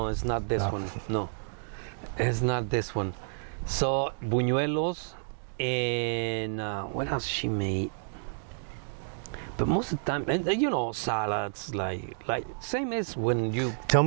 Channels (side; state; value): left; silent; digital silence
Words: it's not this one. No, it's not this one. So, buñuelos, and what else she made? But most of the time, and you know, salads, like same as when you. Tell